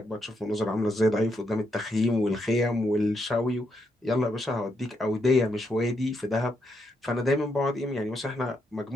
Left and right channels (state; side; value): normal; both; correlation 0.79